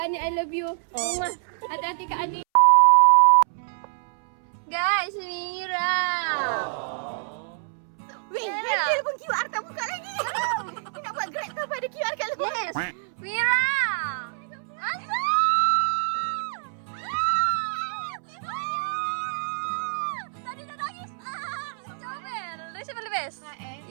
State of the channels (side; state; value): left; silent; 61 dB below the other